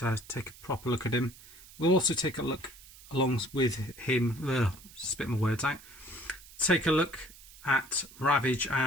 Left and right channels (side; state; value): right; noise; hiss, 20 dB below the sound